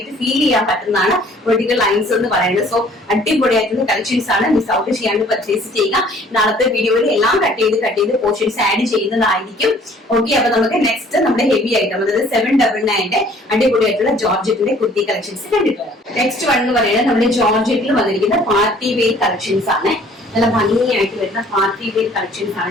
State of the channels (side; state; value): both; normal; correlation 0.56